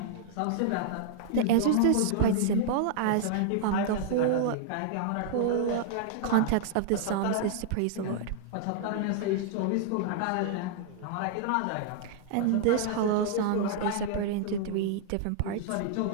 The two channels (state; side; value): different; both; correlation -0.01